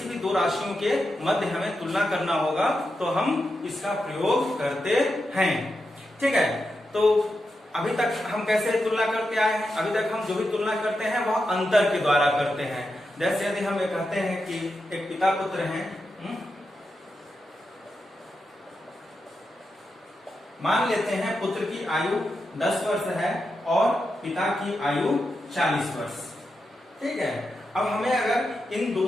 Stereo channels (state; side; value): normal; both; correlation 0.87